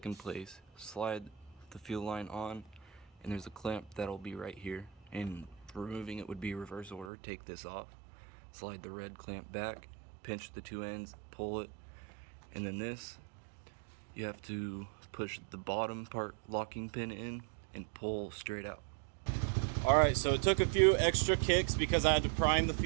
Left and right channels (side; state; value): left; drops out; at 7.1 s